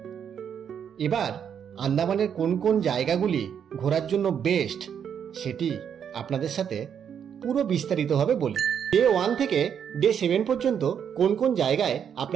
এবার আন্দামানের কোন কোন জায়গাগুলি ঘোরার জন্য বেস্ট সেটি আপনাদের সাথে পুরো বিস্তারিতভাবে বলি। ডে 1 থেকে ডে 7 পর্যন্ত কোন কোন জায়গায়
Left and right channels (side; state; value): left; quieter; 8.1 dB